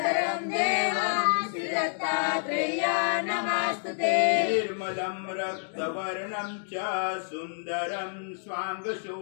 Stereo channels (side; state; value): right; silent; digital silence